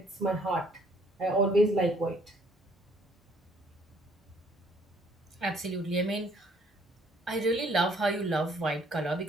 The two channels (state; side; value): normal; both; correlation 0.62